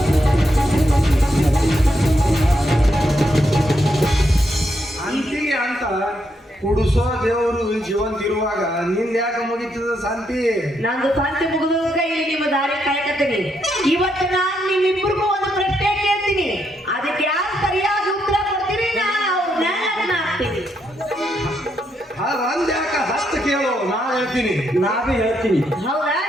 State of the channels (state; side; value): normal; both; correlation 0.78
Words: ಅಂತಿಗೆ ಅಂತ ಕುಡಿಸೋ ದೇವರು ಜೀವಂತ ಇರುವಾಗ ನಿಂದ ಯಾಕೆ ಮುಗಿತದ ಶಾಂತಿ ನಂದು ಶಾಂತಿ ಮುಗಿದಾಗ ಇಲ್ಲಿ ನಿಮ್ಮ ದಾರಿ ಕಾಯ್ಕತ್ತೀನಿ ಇವತ್ತು ನಾನು ನಿಮ್ಮಿಬ್ಬರಿಗೂ ಒಂದು ಪ್ರಶ್ನೆ ಕೇಳ್ತೀನಿ ಅದಕ್ಕೆ ಯಾರು ಸರಿಯಾಗಿ ಉತ್ತರ ಕೊಡ್ತೀರಿ ನಾನು ಆಗ್ತೀನಿ ಒಂದ್ ಯಾಕ 10 ಕೇಳು ನಾ ಹೇಳ್ತೀನಿ ನಾವೇ ಹೇಳ್ತೀನಿ ಹೌದಾ